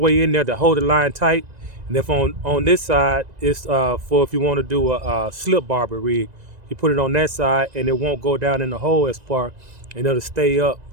in there to hold the line tight. And if on this side, it's for if you want to do a slip barber rig, you put it on that side and it won't go down in the hole as far, and it'll stay up.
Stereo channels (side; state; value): left; late; 2.0 ms